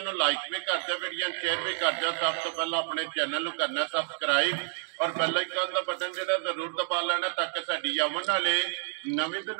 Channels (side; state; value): left; silent; digital silence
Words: नूं लाइक भी कर दो, वीडियो शेयर भी कर दो। सब तो पहला अपने चैनल नूं करना सबसक्राइब और बेल आइकन का बटन जिहड़ा जरूर दबा लेना ताकि साडी आवन वाली नवीं तो